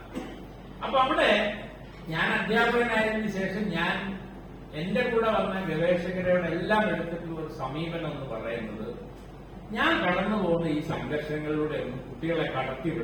അപ്പൊ അവിടെ ഞാൻ അധ്യാപകനായതിനു ശേഷം ഞാൻ എന്റെ കൂടെ വന്ന ഗവേഷകരോട് എല്ലാം എടുത്തിട്ടുള്ള ഒരു സമീപനം എന്ന് പറയുന്നത്, ഞാൻ കടന്നു പോകുന്ന ഈ സംഘർഷങ്ങളിലൂടെ ഒന്നും കുട്ടികളെ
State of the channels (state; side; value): identical; both; correlation 1.00